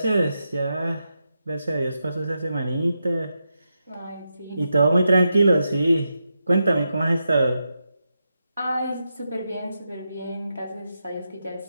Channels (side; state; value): both; inverted; correlation -0.87